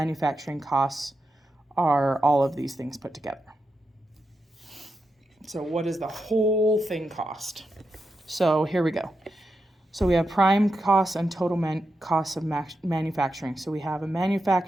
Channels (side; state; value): both; normal; correlation 0.87